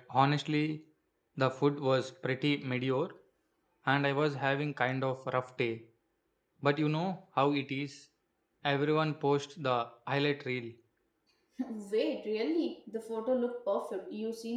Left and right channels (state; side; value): identical; both; correlation 1.00